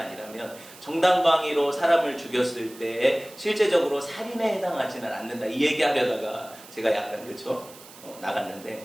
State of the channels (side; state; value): right; noise; hiss, 19 dB below the sound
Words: 정당방위로 사람을 죽였을 때 실제적으로 살인에 해당하지는 않는다 이 얘기하려다가 제가 약간 그쵸?